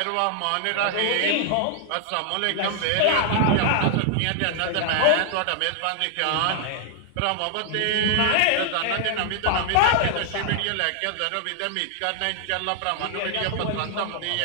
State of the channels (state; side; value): different; both; correlation 0.00